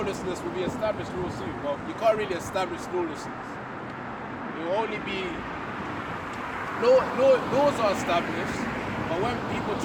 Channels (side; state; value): both; identical; correlation 1.00